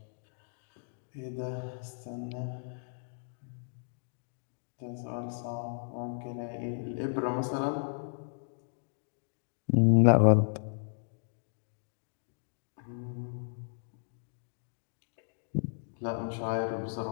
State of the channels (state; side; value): silent; right; digital silence